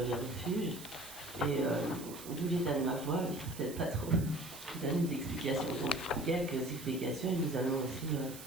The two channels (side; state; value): right; noise; hiss, 14 dB below the sound